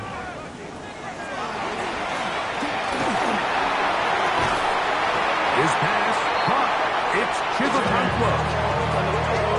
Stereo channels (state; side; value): identical; both; correlation 1.00